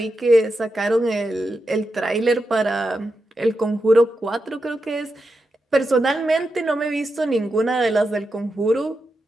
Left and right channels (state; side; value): normal; both; correlation 0.88